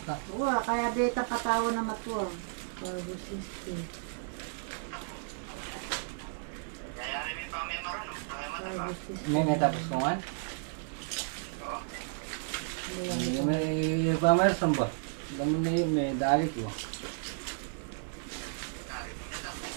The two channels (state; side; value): silent; left; 56 dB below the other